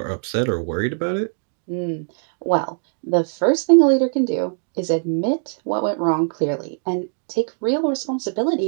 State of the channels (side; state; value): left; silent; 62 dB below the other